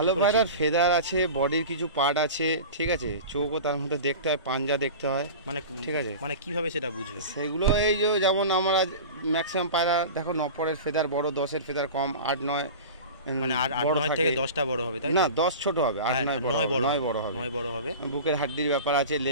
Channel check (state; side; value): inverted; both; correlation -0.33